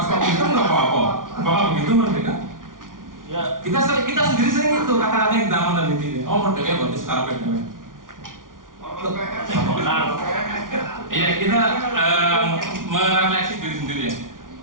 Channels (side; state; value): left; late; 0.89 ms